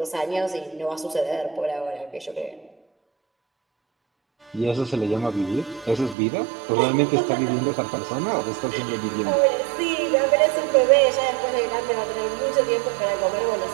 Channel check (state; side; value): drops out; left; at 6.2 s